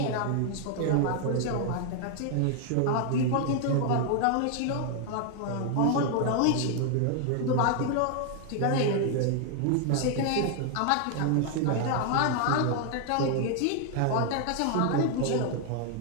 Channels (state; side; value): different; both; correlation 0.00